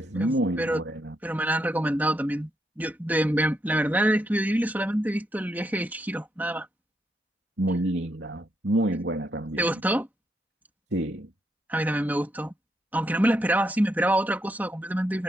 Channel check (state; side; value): normal; both; correlation 0.79